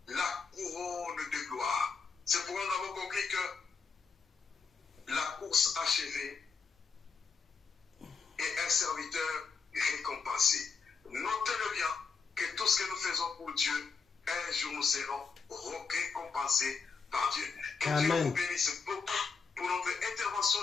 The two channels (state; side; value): quieter; right; 5.2 dB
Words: la couronne de gloire. C'est pourquoi nous avons compris que la course achevée et un serviteur récompensé. Notez-le bien que tout ce que nous faisons pour Dieu, un jour nous serons récompensés par Dieu. Que Dieu Amen. vous bénisse beaucoup pour notre intervention